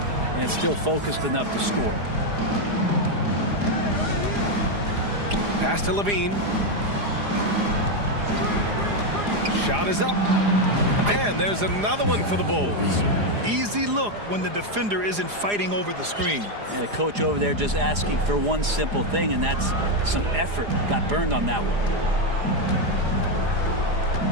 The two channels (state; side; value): late; left; 4.9 ms